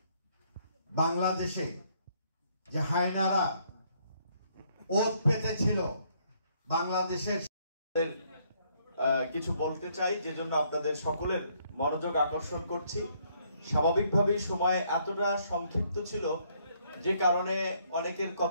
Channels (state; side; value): inverted; both; correlation -0.69